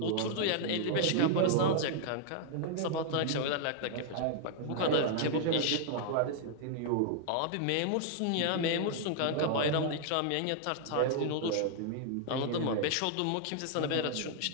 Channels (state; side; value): different; both; correlation 0.00